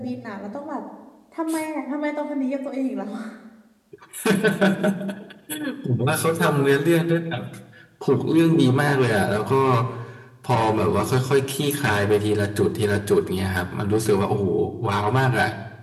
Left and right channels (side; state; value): both; identical; correlation 1.00